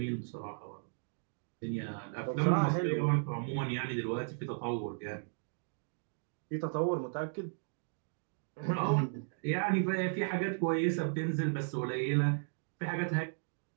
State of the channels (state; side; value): silent; left; digital silence